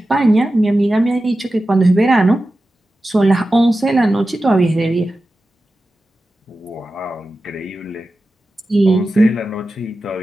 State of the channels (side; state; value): both; normal; correlation 0.93